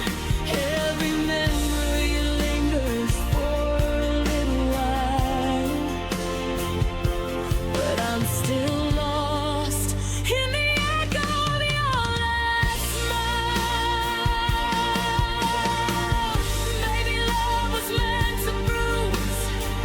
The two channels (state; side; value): identical; both; correlation 1.00